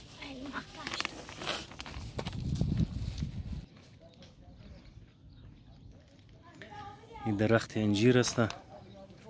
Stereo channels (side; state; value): both; identical; correlation 1.00